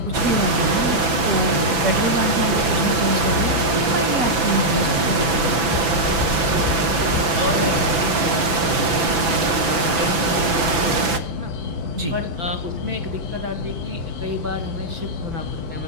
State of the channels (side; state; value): left; late; 6.0 ms